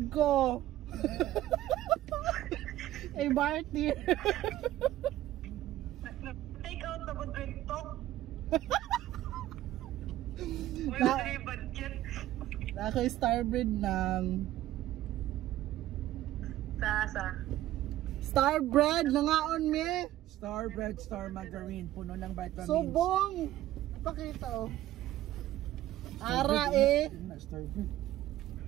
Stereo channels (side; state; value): left; quieter; 14.3 dB